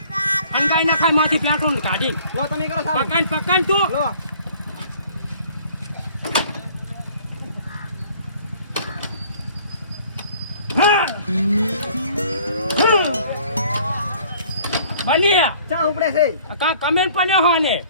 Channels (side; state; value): both; inverted; correlation -0.54